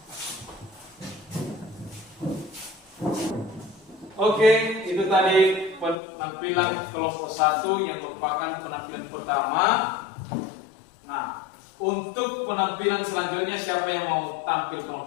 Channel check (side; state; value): right; drops out; at 6.0 s